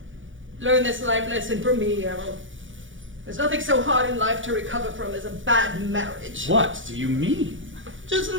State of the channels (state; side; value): late; left; 0.56 ms